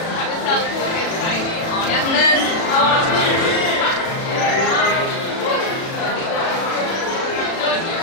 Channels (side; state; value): right; late; 37 ms